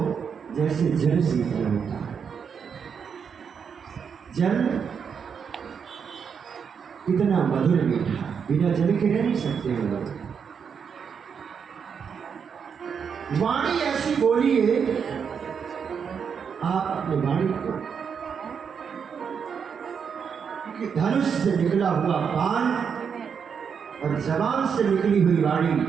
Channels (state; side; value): quieter; left; 6.7 dB